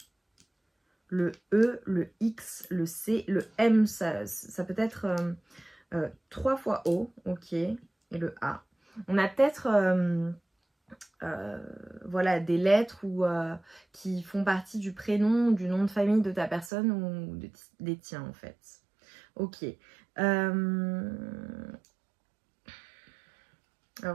le E, le X, le C, le M. Ça peut être 3 fois O, ok, et le A. On a peut-être voilà, des lettres qui font partie du prénom, du nom de famille de ta personne ou des tiens en fait. Ok. Alors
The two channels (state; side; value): drops out; left; at 16.7 s